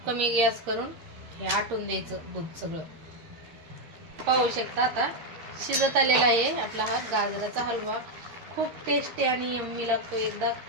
कमी गॅस करून हे आटून द्यायचं दूध सगळं. पाहू शकता आता शिजत आलेला आहे आपला हा गाजराचा हलवा. खूप टेस्टी आणि यम्मी लागतो. एकदा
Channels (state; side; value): late; left; 13 ms